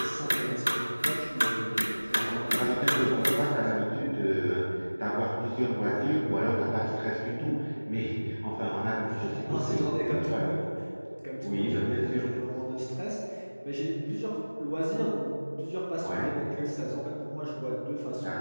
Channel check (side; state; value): both; inverted; correlation -1.00